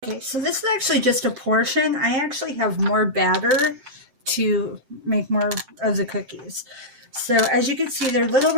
Okay, so this is actually just a portion. I actually have more batter to make more of the cookies. So as you can see, they're little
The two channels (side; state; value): left; late; 7.6 ms